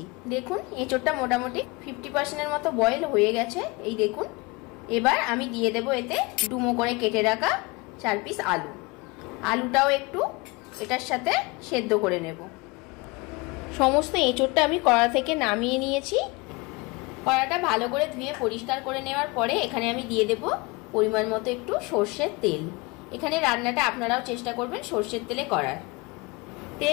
দেখুন এঁচোড়টা মোটামুটি 50%-এর মতো বয়েল হয়ে গেছে। এই দেখুন, এবার আমি দিয়ে দেব এতে ডুমো করে কেটে রাখা 4 পিস আলু। আলুটাও একটু এটার সাথে সেদ্ধ করে নেব। সমস্ত এঁচোড়টা আমি কড়া থেকে নামিয়ে নিয়েছি। কড়াটা ভালো করে ধুয়ে পরিষ্কার করে নেওয়ার পরে এখানে আমি দিয়ে দেব পরিমাণ মতো একটু সর্ষের তেল। এখানে রান্নাটা আপনারাও চেষ্টা করবেন সর্ষের তেলে করার।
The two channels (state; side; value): quieter; right; 25.6 dB